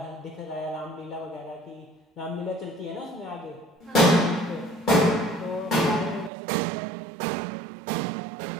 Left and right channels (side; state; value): left; drops out; at 6.3 s